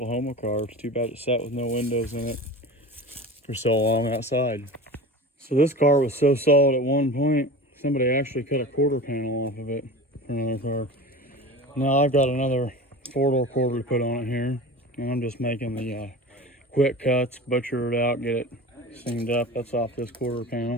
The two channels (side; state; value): both; normal; correlation 0.34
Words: car. It's too bad it sat with no windows in it for so long outside. So this car was so solid at one point, somebody actually cut a quarter panel off of it for another car. Now I've got another 4-door quarter to put on it here. And I'm just making the quick cuts, butcher it out, get it seamed up. That's off this quarter